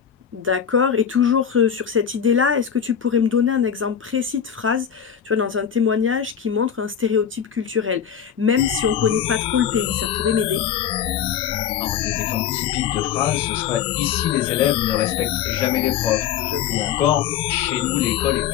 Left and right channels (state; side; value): quieter; right; 8.4 dB